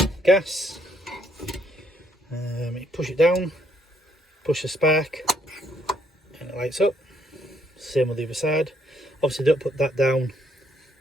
Gas, you push it down, push the spark and it lights up. Same with the other side. Obviously don't put that down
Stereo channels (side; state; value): both; normal; correlation 0.70